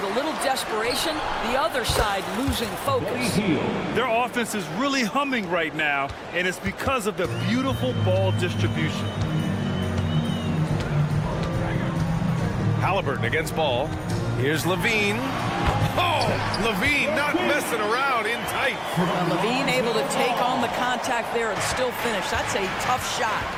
a little desperation, the other side losing focus. Their offense is really humming right now, and it's because of the beautiful ball distribution. Halliburton against ball. Here's Levine. Oh, Levine not messing around, in tight. Well, Levine able to take on the contact there and still finish. That's a tough shot.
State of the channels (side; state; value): both; identical; correlation 1.00